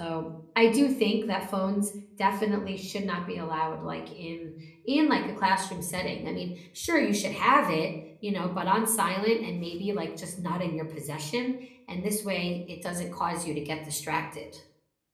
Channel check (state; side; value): identical; both; correlation 1.00